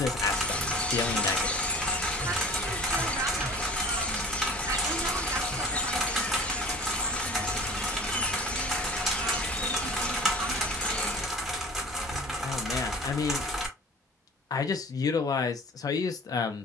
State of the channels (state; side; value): normal; both; correlation 0.44